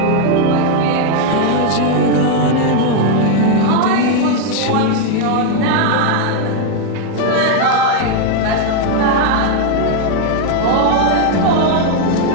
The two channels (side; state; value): both; different; correlation 0.00